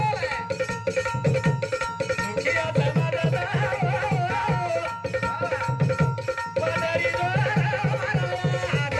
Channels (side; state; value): both; identical; correlation 1.00